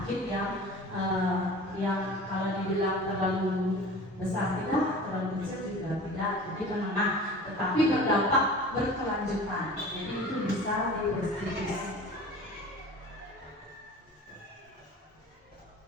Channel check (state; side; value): normal; both; correlation 0.40